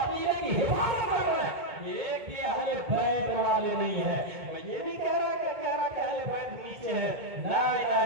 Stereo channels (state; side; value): late; left; 2.2 ms